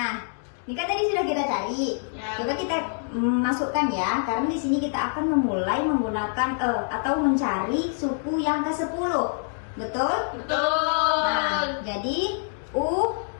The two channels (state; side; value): silent; right; digital silence